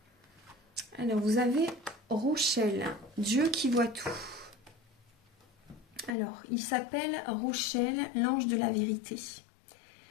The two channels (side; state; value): right; drops out; at 6.2 s